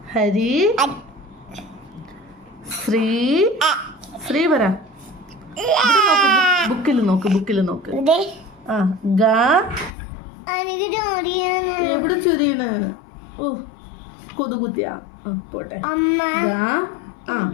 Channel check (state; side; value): drops out; right; at 9.9 s